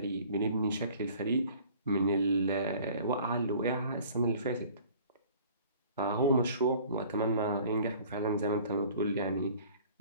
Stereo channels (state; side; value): inverted; both; correlation -0.50